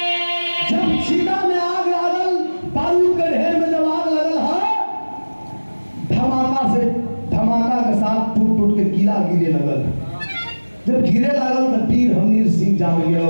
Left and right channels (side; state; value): both; inverted; correlation -1.00